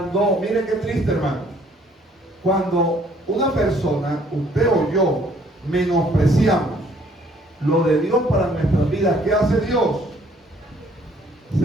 Mire qué triste, hermano. Cuando una persona, usted o yo, menospreciamos lo de Dios para nuestras vidas, ¿qué hace Dios?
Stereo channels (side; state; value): both; normal; correlation 0.62